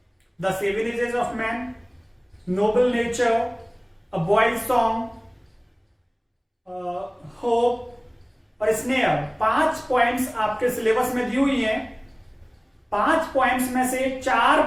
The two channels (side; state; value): both; identical; correlation 1.00